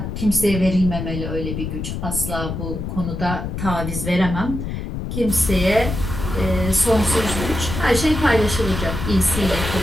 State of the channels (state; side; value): noise; left; rumble, 5 dB below the sound